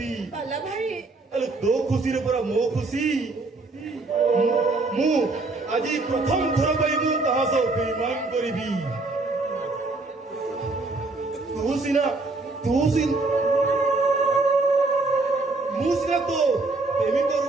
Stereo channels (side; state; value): left; quieter; 3.4 dB